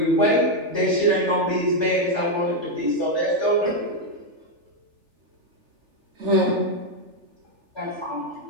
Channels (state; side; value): late; left; 3.4 ms